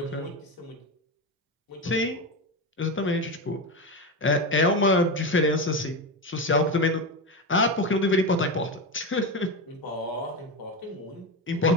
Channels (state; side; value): normal; both; correlation 0.17